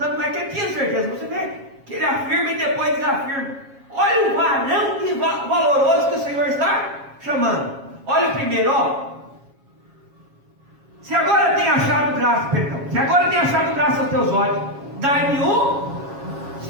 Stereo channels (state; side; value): late; left; 7.3 ms